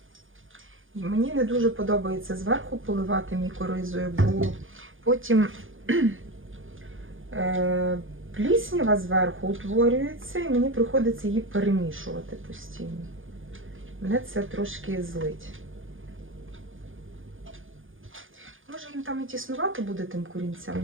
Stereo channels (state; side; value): late; left; 0.58 ms